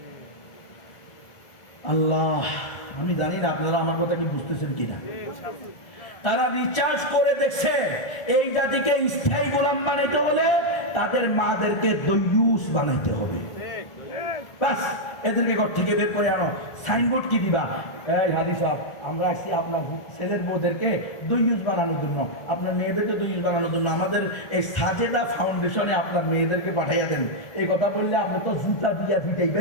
আল্লাহ, আমি জানি না আপনারা আমার কথা কি বুঝতেছেন কিনা। তারা রিচার্জ করে দেখছে, এই জাতিকে স্থায়ী গোলাম বানাইতে হলে তাদের মাদেরকে দইয়ুস বানাইতে হবে। বাস, এদেরকে ঘর থেকে বের করে আনো। সাইনবোর্ড কি দিবা? এই হাজি সাহেব, আমরা আসছি আপনার ছেলের বউদেরকে দইয়ুস বানানোর জন্য, আপনার মেয়েদেরকে দইয়ুস বানানোর জন্য আমাদের এই সাজেদা ফাউন্ডেশনে আপনার মেয়েদেরকে পাঠাইয়া দেন। এই কথা বললে আপনি তো জুতা দিয়া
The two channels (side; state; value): right; late; 1.4 ms